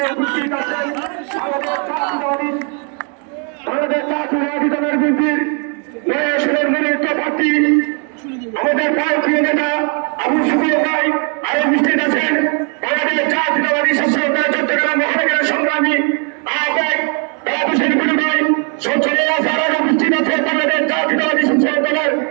আমাদের জাতীয়তাবাদী দলের বিএনপির নয়াসনের মনোনীত প্রার্থী আমাদের প্রিয় নেতা আবু সুফিয়ান ভাই, আরো উপস্থিত আছেন বাংলাদেশ জাতীয়তাবাদী ছাত্র দল চট্টগ্রাম মহানগরের সংগ্রামী আহ্বায়ক দাওয়াত হোসেন কুলু ভাই, সঞ্চালক আরো উপস্থিত আছেন বাংলাদেশ জাতীয়তাবাদী ছাত্র দলের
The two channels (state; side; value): quieter; left; 38.8 dB